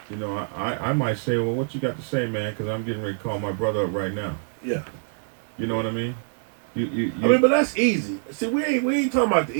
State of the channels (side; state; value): left; silent; digital silence